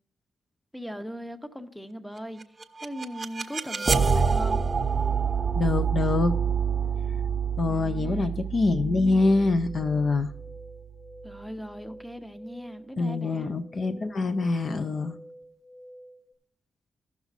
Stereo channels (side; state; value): both; normal; correlation 0.81